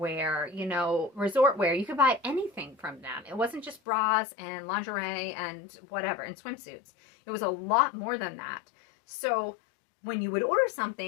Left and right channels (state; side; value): drops out; right; at 3.8 s